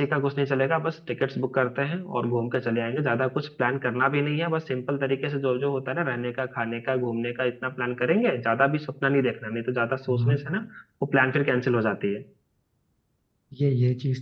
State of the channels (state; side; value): identical; both; correlation 1.00